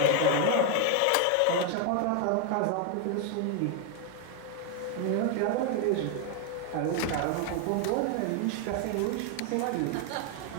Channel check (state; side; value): different; both; correlation 0.00